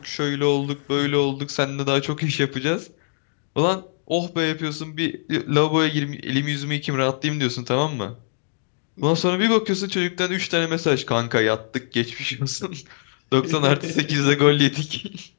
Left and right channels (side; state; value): right; silent; digital silence